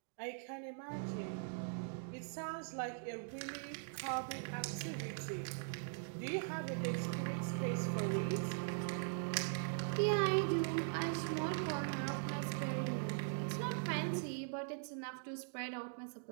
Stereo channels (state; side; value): silent; left; digital silence